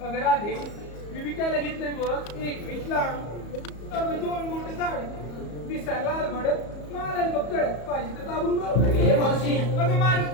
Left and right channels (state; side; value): late; right; 34 ms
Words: अगं राधे मी विकायला घेतलंय बघ एक वीसला. अगं 2 बोट झाड दिसायला लाल भडक मारायला बघ कळत पाहिजे तर दाबून बघ. ए मावशी अगं